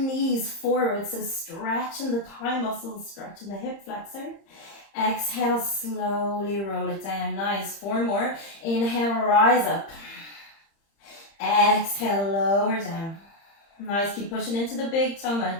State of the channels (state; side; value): late; right; 30 ms